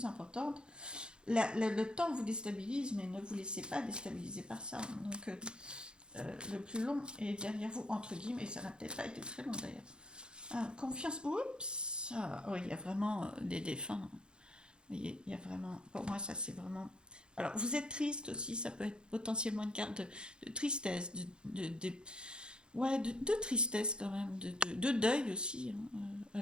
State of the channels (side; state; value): left; late; 0.050 ms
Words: importantes. Le temps vous déstabilise, mais ne vous laissez pas déstabiliser par ça. Donc, le plus long est derrière vous, entre guillemets, et ça n'a peut-être pas été très long d'ailleurs. Confiance, oups, oui, il y a vraiment des défunts. Il y a vraiment, pour moi, ça c'est vraiment. Alors, vous êtes triste aussi, ça peut être potentiellement une carte de tristesse, ouais, de tristesse quand même, de deuil aussi, hein.